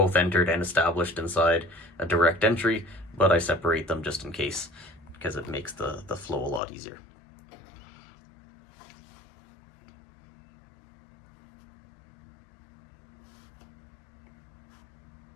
entered and established inside a direct entry, but I separate them just in case, because it makes the flow a lot easier.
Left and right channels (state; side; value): drops out; right; at 6.6 s